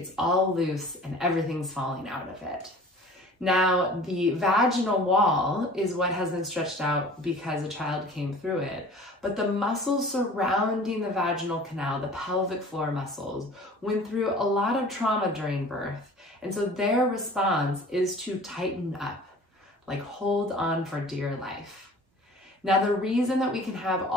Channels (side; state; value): both; normal; correlation 0.45